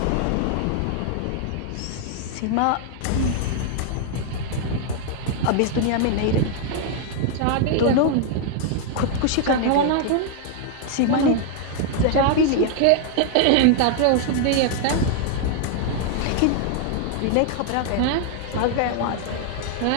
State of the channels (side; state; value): both; different; correlation 0.00